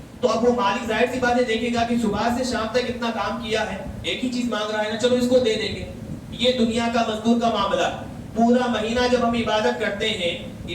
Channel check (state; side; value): identical; both; correlation 1.00